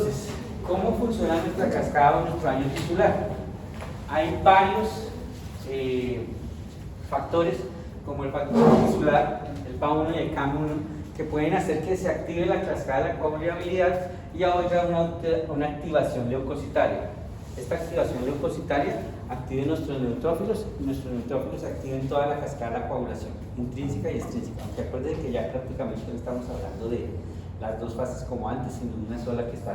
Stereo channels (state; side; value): identical; both; correlation 1.00